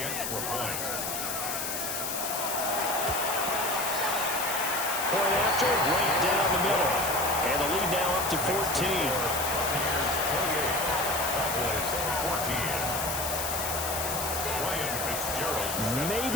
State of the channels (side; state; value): left; noise; hiss, 3 dB below the sound